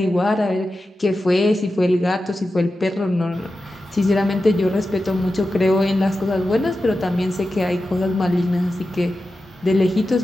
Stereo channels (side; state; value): both; normal; correlation 0.92